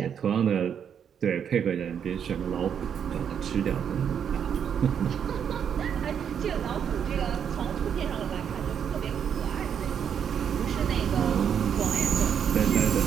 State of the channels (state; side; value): quieter; left; 8.1 dB